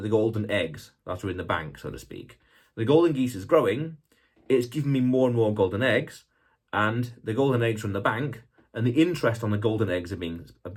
golden eggs that are in the bank, so to speak. The golden geese is growing, it's giving me more and more golden eggs, and the golden eggs are in the bank, and the interest on the golden eggs are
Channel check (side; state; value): both; identical; correlation 1.00